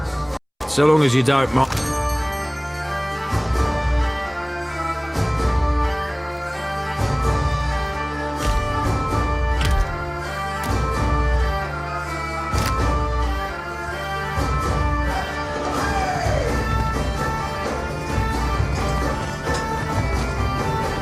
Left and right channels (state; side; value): identical; both; correlation 1.00